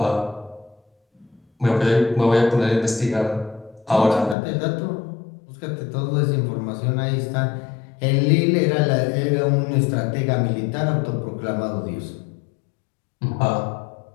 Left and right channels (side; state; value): right; drops out; at 4.4 s